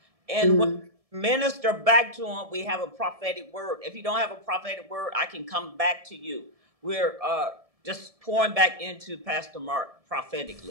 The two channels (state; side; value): late; left; 1.7 ms